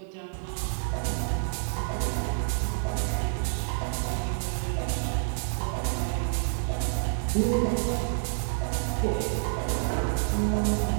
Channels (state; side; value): silent; left; digital silence